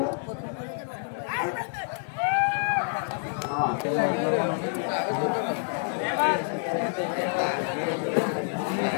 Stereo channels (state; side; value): silent; right; 60 dB below the other